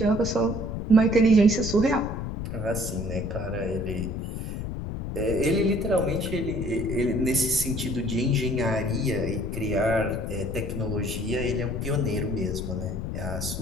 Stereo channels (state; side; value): noise; left; rumble, 5 dB below the sound